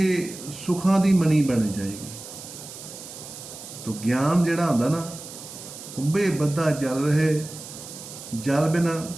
ਸੁਖਾਂ ਦੀ ਮਣੀ ਬਣ ਜਾਏਗੀ। ਤੋ ਗਿਆਨ ਜਿਹੜਾ ਹੁੰਦਾ ਨਾ, ਕੁੰਭੇ ਬੱਧਾ ਜਲ ਰਹੇ, ਜਲ ਬਿਨਾ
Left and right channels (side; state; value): right; noise; hiss, 13 dB below the sound